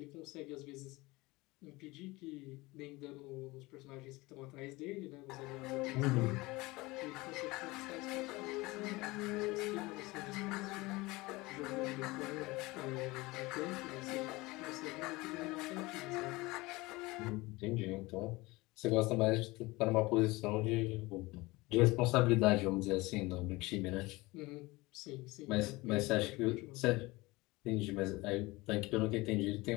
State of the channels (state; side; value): quieter; right; 21.9 dB